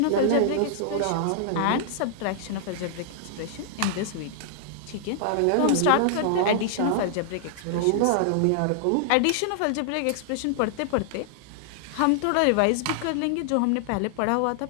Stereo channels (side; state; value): both; different; correlation -0.01